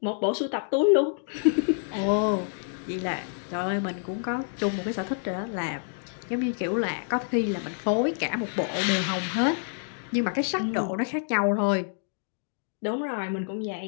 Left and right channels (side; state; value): right; silent; digital silence